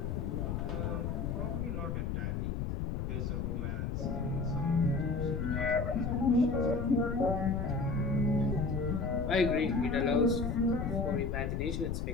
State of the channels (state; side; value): noise; left; rumble, 1 dB below the sound